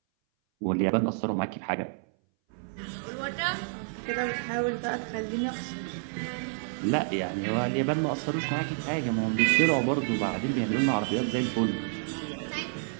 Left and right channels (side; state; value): left; silent; 58 dB below the other